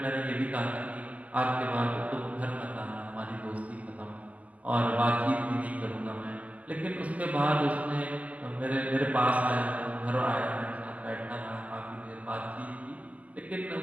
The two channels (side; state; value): left; late; 0.073 ms